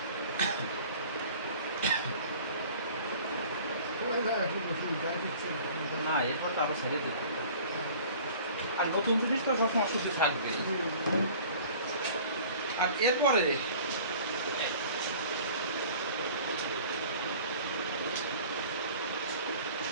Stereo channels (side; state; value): both; inverted; correlation -0.47